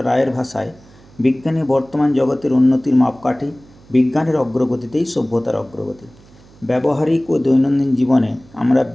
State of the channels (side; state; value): right; noise; hum, 26 dB below the sound